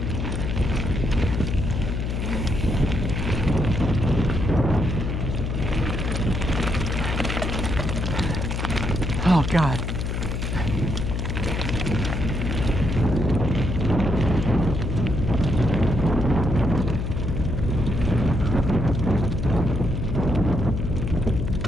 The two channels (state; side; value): noise; left; hum, 2 dB below the sound